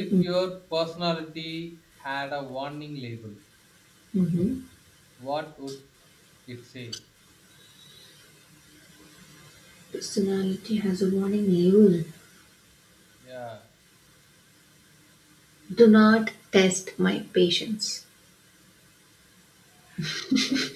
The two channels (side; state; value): both; identical; correlation 1.00